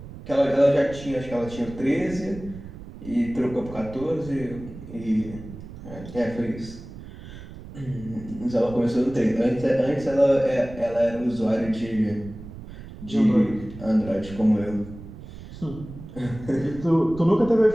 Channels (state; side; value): noise; right; rumble, 14 dB below the sound